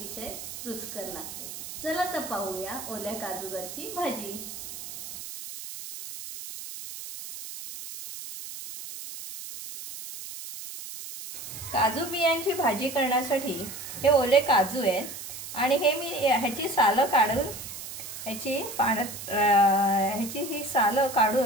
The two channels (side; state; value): right; noise; hiss, 10 dB below the sound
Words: रुचकर लागते। चला तर पाहूया ओल्या काजूगरची भाजी। काजू बियांची भाजी करण्यासाठी हे ओले काजू आहेत आणि हे मी ह्याची सालं काढून ह्याची ही सालं